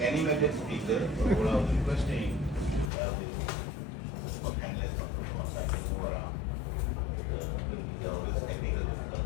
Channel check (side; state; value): right; drops out; at 2.9 s